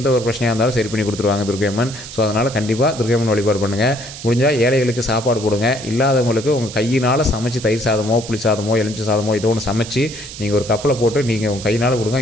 ஒரு பிரச்சனையாக இருந்தாலும் சரி பண்ணி கொடுத்துருவாங்க துர்க்கை அம்மன். ஸோ அதனால் கண்டிப்பாக துர்க்கை அம்மன் வழிபாடு பண்ணுங்கள். முடிஞ்சால் ஏழைகளுக்கு சாப்பாடு போடுங்க. இல்லாதவங்களுக்கு உங்கள் கையினால் சமைச்சு தயிர் சாதமோ புளி சாதமோ எலுமிச்சை சாதமோ ஏதோ ஒன்று சமைச்சு நீங்கள் ஒரு கப்பில் போட்டு நீங்கள் உங்கள் கையினால்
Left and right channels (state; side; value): noise; right; hiss, 13 dB below the sound